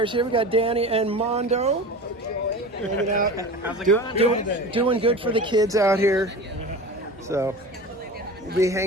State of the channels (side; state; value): both; normal; correlation 0.33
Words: here. We got Danny and Mondo hanging out, doing good for the kids out here. So we'll be